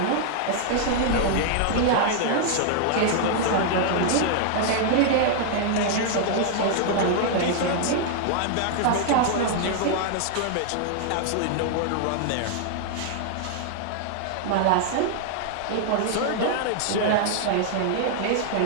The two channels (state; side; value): different; both; correlation -0.01